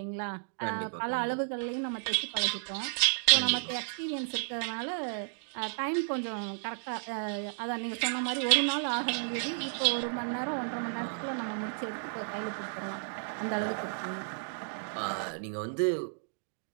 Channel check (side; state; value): left; silent; digital silence